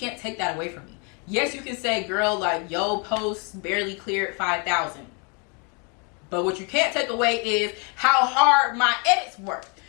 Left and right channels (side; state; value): right; quieter; 34.2 dB